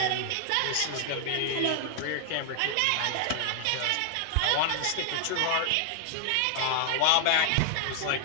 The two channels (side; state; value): both; different; correlation 0.00